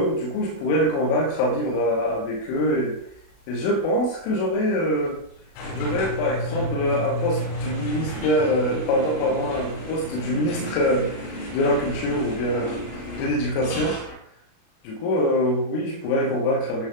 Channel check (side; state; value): right; late; 36 ms